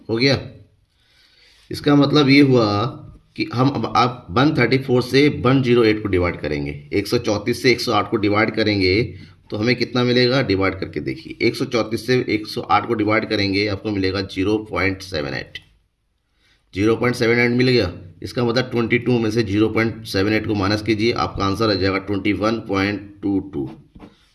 हो गया। इसका मतलब ये हुआ कि हम अब आप 134 से 108 को डिवाइड करेंगे, 134 से 108 को डिवाइड करेंगे तो हमें कितना मिलेगा, डिवाइड करके देखिए। 134 से 108 को डिवाइड करेंगे आपको मिलेगा 0.78, 0.78 मिल गया। इसका मतलब 22 में से 0.78 को माइनस कीजिए, आपका आंसर आ जाएगा 21.22।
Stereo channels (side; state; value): both; identical; correlation 1.00